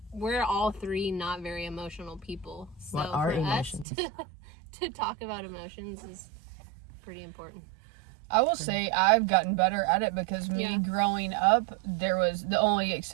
we're all three not very emotional people. So what are for emotions? us to talk about emotions is pretty important. I will say I've gotten better at it, because me growing up, there was the only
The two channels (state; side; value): drops out; left; at 3.9 s